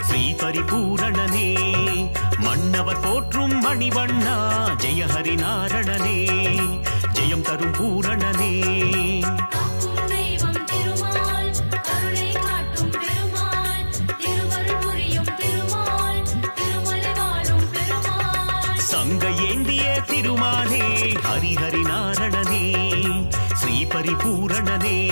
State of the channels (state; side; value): inverted; both; correlation -1.00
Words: ஸ்ரீ பரிபூரணனே மன்னவர் போற்றும் மணிவண்ணா ஜெய ஹரி நாரணனே ஜெயம் தரும் பூரணனே காக்கும் தெய்வம் திருமால் கருணை காட்டும் பெருமாள் திருவருள் புரியும் திருமால் திருமலை வாழும் பெருமாள் சங்க ஏந்திய திருமாலே ஹரிஹரி நாரணனே ஸ்ரீ பரிபூரணனே